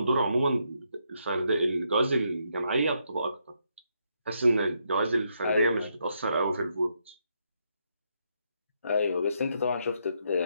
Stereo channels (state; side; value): inverted; both; correlation -0.78